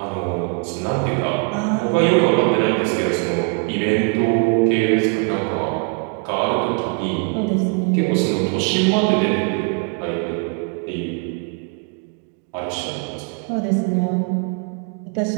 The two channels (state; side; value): quieter; left; 33.6 dB